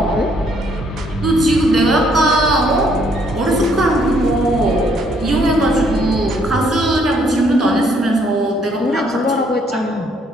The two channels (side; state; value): both; normal; correlation 0.68